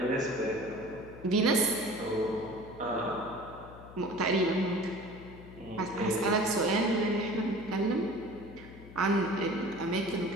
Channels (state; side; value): noise; left; hum, 17 dB below the sound